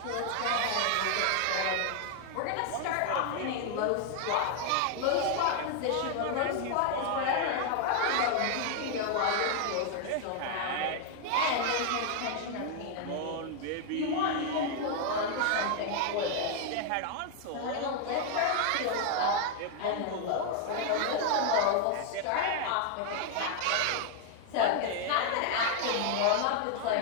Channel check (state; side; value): different; both; correlation 0.00